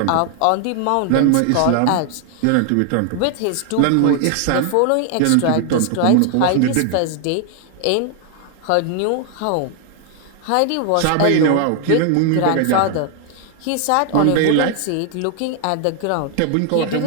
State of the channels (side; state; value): both; different; correlation 0.00